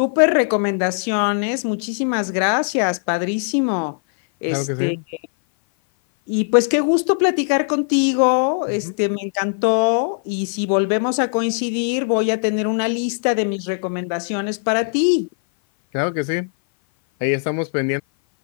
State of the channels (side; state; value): right; silent; 57 dB below the other